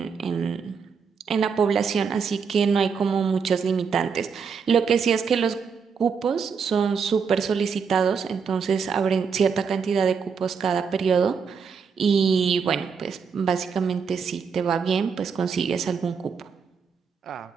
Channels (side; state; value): left; quieter; 6.0 dB